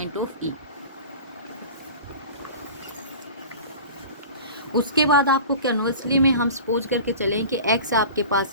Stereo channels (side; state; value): both; inverted; correlation -0.37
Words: of E. उसके बाद आपको कन्वर्सली में हम सपोज करके चलें कि x आपके पास